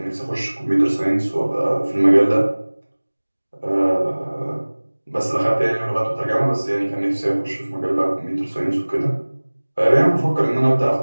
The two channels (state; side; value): inverted; both; correlation -1.00